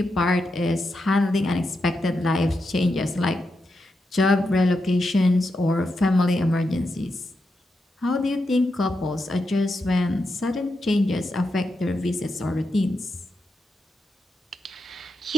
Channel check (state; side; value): normal; both; correlation 0.86